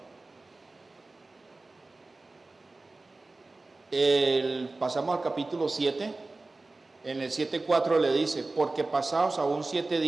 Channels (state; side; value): quieter; left; 3.3 dB